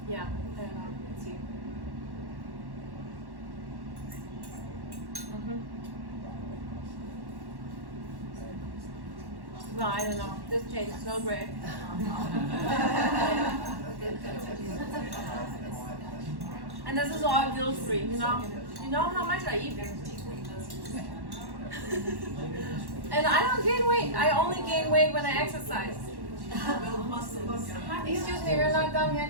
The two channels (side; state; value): left; late; 1.1 ms